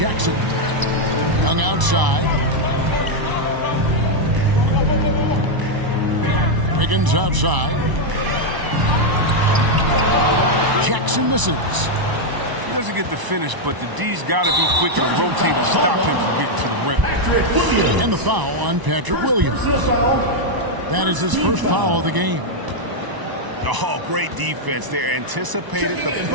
Young outside. Wiggins outside. Jackson misses. He doesn't get the finish, but the D's got to be quick to rotate and stop him from getting to the rim. And the foul on Patrick Williams. That is his first foul of the game. Oh, great defense there. Anticipated the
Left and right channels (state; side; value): late; left; 1.0 ms